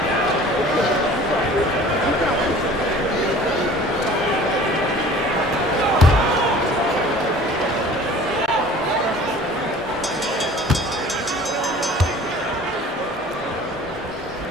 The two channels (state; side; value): normal; both; correlation 0.46